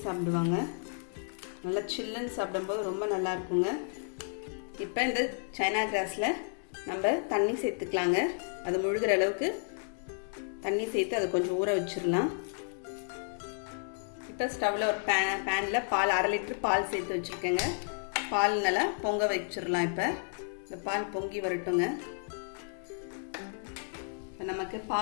சாப்பிடுவாங்க. நல்லா சில்லுன்னு சாப்பிடும்போது ரொம்ப நல்லா இருக்குங்க. இப்போ இந்த சைனா கிராஸில் நம்ம தண்ணி சேர்த்துக்கலாங்க. அது முழுகிற அளவுக்கு தண்ணி சேர்த்து அதை கொஞ்சம் ஊற வச்சிடலாம். இப்போ ஸ்டவ்வில் ஒரு பேனில் பால் 1/2 லிட்டர் பால் சேர்த்து வச்சுருக்கேங்க. பால் நல்லா பொங்க வச்சிடலாம். இப்போ இந்த பால் பொங்கி வரட்டுங்க. இப்போ நமக்கு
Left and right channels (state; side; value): silent; right; digital silence